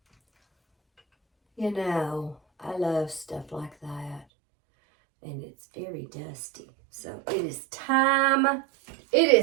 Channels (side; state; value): left; drops out; at 4.2 s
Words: You know, I love stuff like that. And it's very dusty. So it is time. It